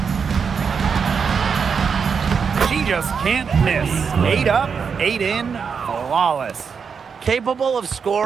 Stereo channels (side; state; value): left; quieter; 6.1 dB